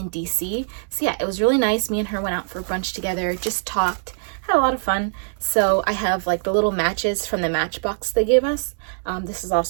DC. So yeah, it was really nice. Me and her went out for brunch together, just talked, had a lot of fun. So I have like the little matches from the Matchbox they gave us. This is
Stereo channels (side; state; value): left; silent; digital silence